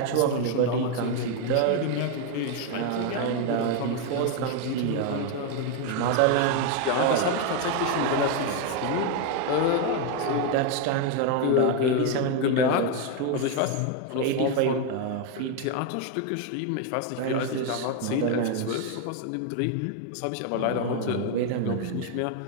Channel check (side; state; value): both; different; correlation 0.01